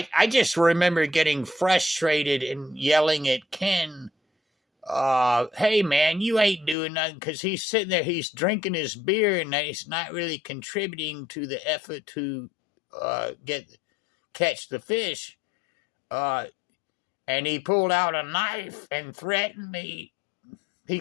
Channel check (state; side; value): drops out; right; at 6.8 s